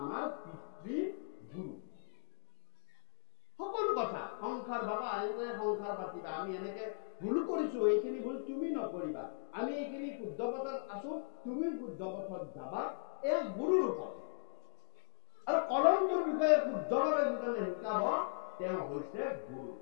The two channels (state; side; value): silent; right; digital silence